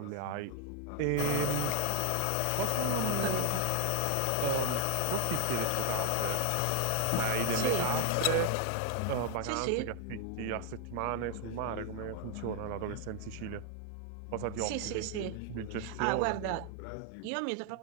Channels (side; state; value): both; different; correlation 0.00